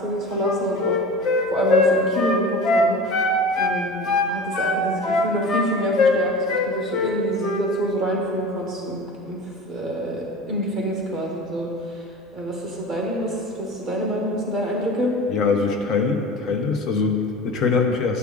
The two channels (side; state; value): both; normal; correlation 0.36